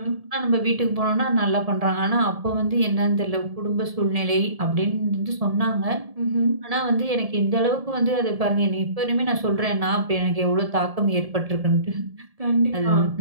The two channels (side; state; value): left; late; 1.7 ms